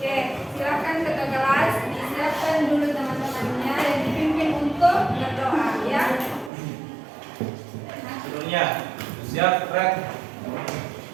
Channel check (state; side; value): drops out; left; at 6.5 s